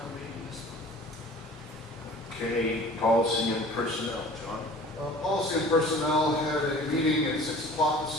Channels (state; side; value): normal; both; correlation 0.45